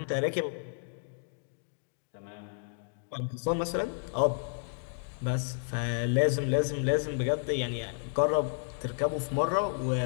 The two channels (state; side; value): silent; right; digital silence